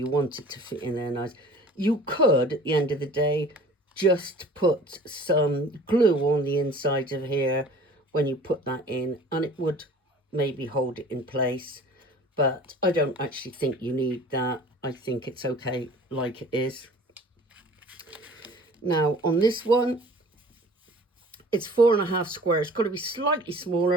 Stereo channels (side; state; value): both; normal; correlation 0.46